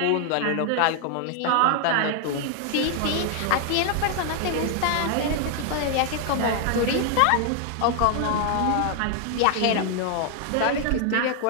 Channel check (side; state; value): both; different; correlation 0.00